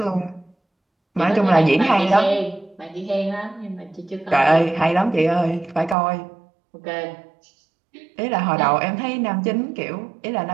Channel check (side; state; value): left; drops out; at 6.0 s